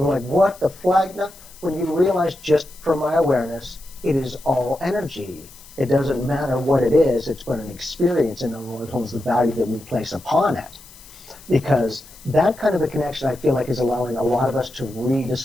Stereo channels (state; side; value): noise; left; hiss, 21 dB below the sound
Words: are like, what the flag? No, when you realize, just from my awareness, it is all energy. It doesn't matter what it is, it's but an experience, and it holds the value that we place upon it. Because that kind of a connection, I feel like, is allowing a lot of us to